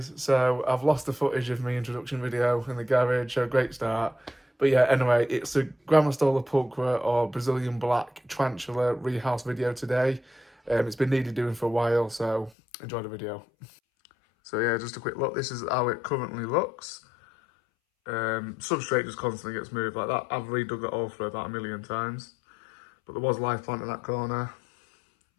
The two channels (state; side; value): drops out; right; at 12.5 s